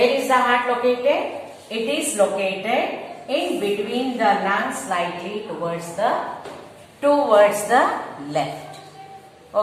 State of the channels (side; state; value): both; identical; correlation 1.00